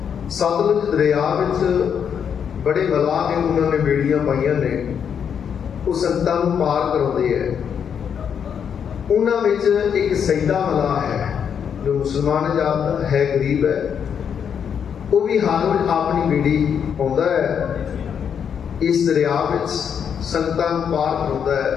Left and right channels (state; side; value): quieter; right; 7.7 dB